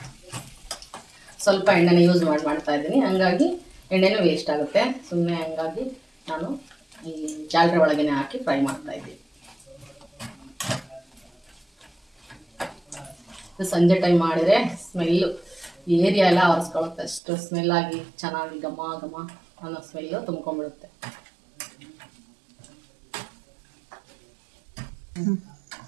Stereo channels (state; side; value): drops out; left; at 17.2 s